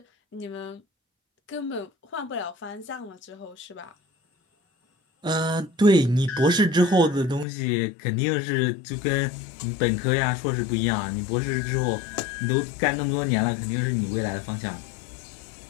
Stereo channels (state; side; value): drops out; right; at 7.5 s